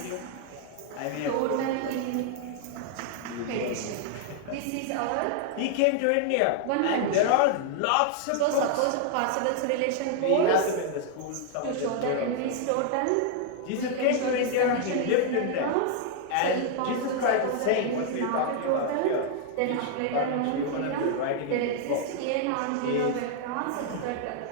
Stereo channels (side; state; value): both; different; correlation 0.00